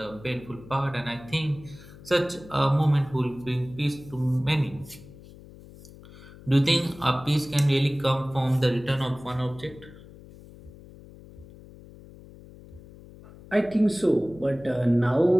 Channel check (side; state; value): left; noise; hum, 20 dB below the sound